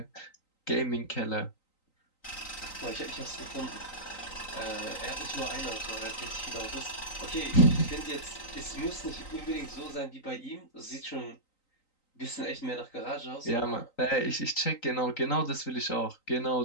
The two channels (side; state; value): right; late; 3.9 ms